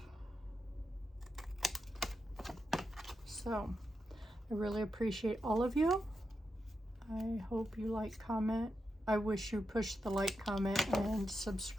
So I really appreciate all of you. I hope you like, comment. I wish you push the like, comment, and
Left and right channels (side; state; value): both; normal; correlation 0.86